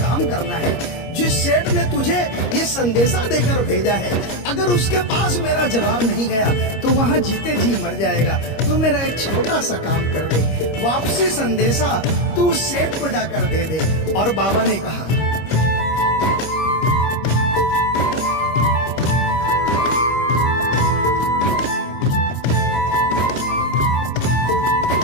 करना है। जिस सेठ ने तुझे ये संदेशा देकर भेजा है, अगर उसके पास मेरा जवाब नहीं गया तो वहाँ जीते जी मर जाएगा। तू मेरा एक छोटा सा काम कर दे, वापसी संदेशा तू उस सेठ को जाकर दे दे। और बाबा ने कहा,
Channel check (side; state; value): right; late; 25 ms